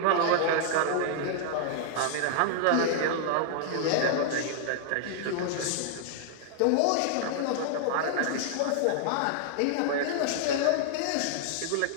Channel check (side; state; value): both; different; correlation -0.01